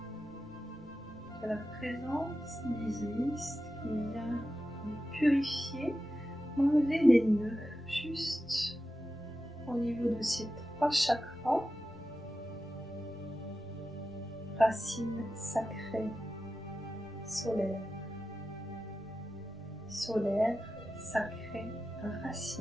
de la présence d'Isis qui vient me purifier, m'enlever des nœuds juste au niveau de ces trois chakras. Racine sacrée, solaire, solaire, sacrée,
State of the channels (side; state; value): right; noise; rumble, 26 dB below the sound